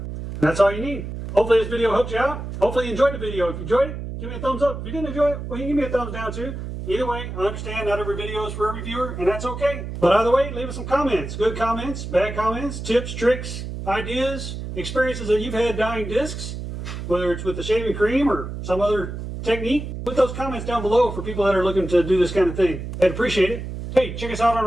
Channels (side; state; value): right; noise; hum, 7 dB below the sound